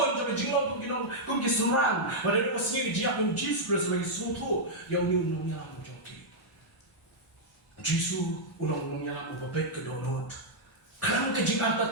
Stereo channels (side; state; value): both; normal; correlation -0.06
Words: sampai jinglong kum kiserang. Ada dua sini dia pun Yesus sebagai suatu yang ulang yalam. Yesus ulang yalam babet ke donut. Kelam